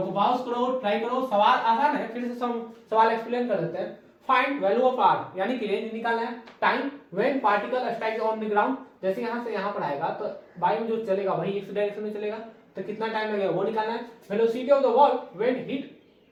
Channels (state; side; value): identical; both; correlation 1.00